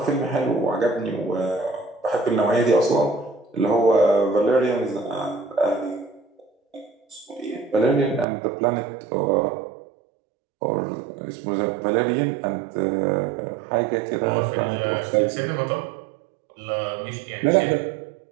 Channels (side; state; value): left; drops out; at 8.2 s